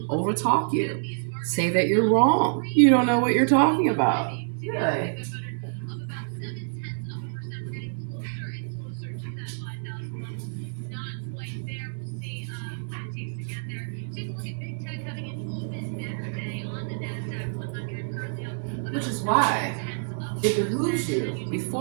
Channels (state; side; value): silent; left; digital silence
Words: overtalk you. Say that you're wrong. You don't know what you're talking about. Yeah. Which is why it behooves you